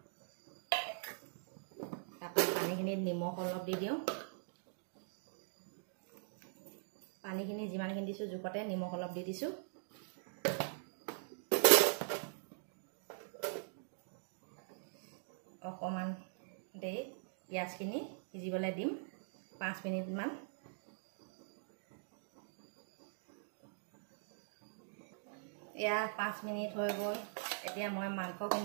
তাৰপৰা পানীখিনিত নিমখ অলপ দি দিওঁ। পানীখিনি যিমানখিনি দিছোঁ জোখতে নিমখ অলপ দি দিছোঁ। অকণমান দেৰি পিঁয়াজখিনি সিজিবলৈ দিম 5 মিনিটমান। এয়া 5 মিনিট হৈ গ'ল। এতিয়া মই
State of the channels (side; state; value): left; silent; digital silence